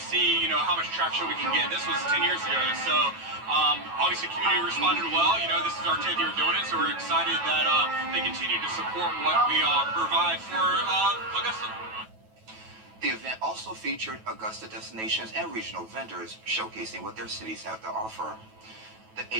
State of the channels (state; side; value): late; left; 9.2 ms